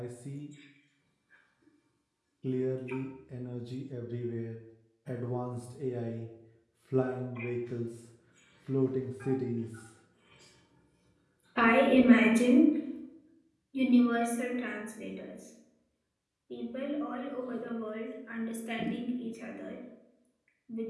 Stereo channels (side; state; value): both; identical; correlation 1.00